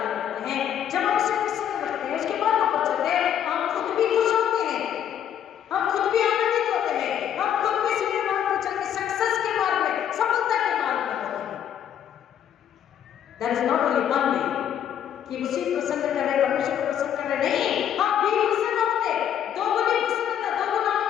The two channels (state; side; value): quieter; right; 9.7 dB